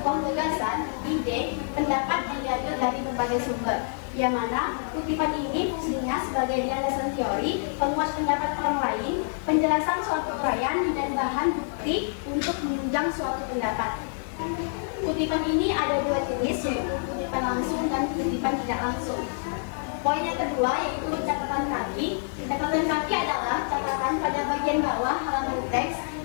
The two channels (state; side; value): silent; right; digital silence